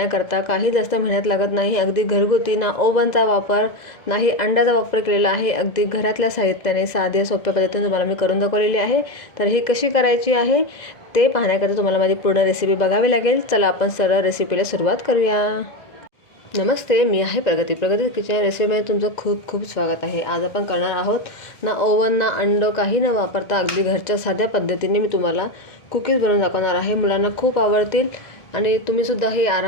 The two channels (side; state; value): right; late; 2.0 ms